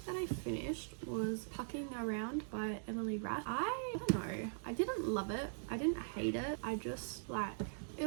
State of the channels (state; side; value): silent; left; digital silence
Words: that I finished was Pucking Around by Emily Rath. I don't know. I didn't love it. I didn't hate it. I just it